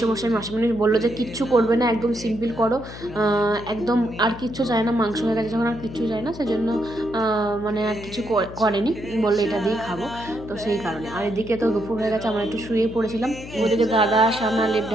মাসিমণি বললো যে কিচ্ছু করবে না, একদম সিম্পল করো, একদম আর কিচ্ছু চায় না, মাংস হয়ে গেছে যখন আর কিচ্ছু চায় না, সেজন্য মানে আর কিছু করেনি, বললো এটা দিয়ে খাবো। তো সেই কারণে আর এদিকে তো দুপুর হয়ে গেছে, আমরা একটু শুয়ে পড়েছিলাম। ওইদিকে দাদা সামনে লেপ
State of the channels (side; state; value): left; noise; hum, 13 dB below the sound